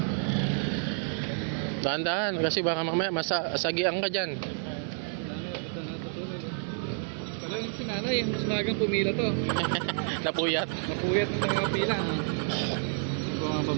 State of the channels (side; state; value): left; silent; digital silence